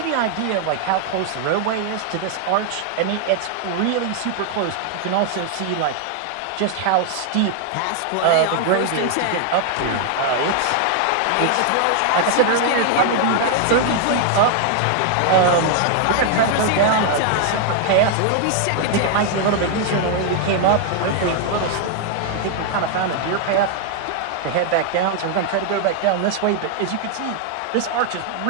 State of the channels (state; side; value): different; both; correlation 0.00